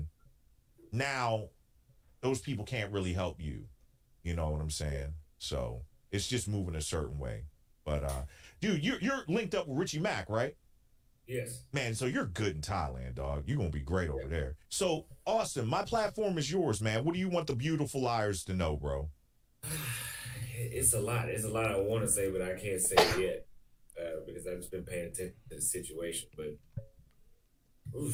now those people can't really help you. You know what I'm saying? So it's just moving a certain way. But dude, you're linked up with Richie Mack, right? Yes. Man, so you're good in Thailand, dog. You're gonna be great over there. So Austin, my platform is yours, man. What do you want the beautiful liars to know, bro? It's a lot. It's a lot I want to say, but I can't say it yet because I've just been paying attention to the situation. But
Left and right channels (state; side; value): identical; both; correlation 1.00